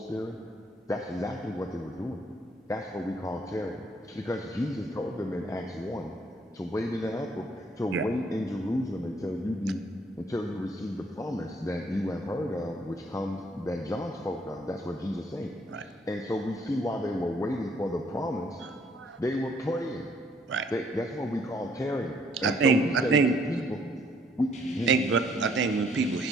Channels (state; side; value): normal; both; correlation 0.65